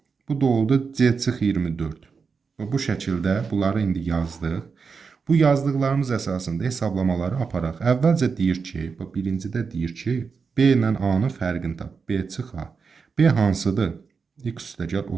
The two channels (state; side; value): quieter; left; 5.3 dB